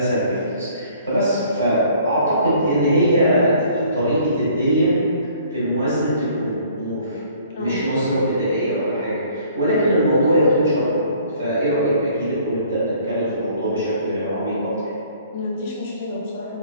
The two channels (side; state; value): both; inverted; correlation -0.57